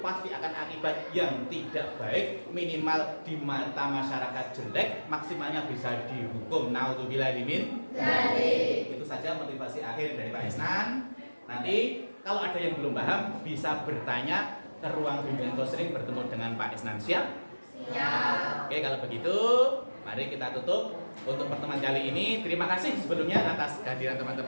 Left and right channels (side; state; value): both; inverted; correlation -1.00